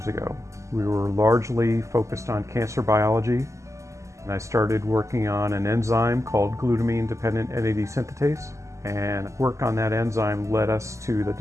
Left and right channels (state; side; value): late; left; 0.15 ms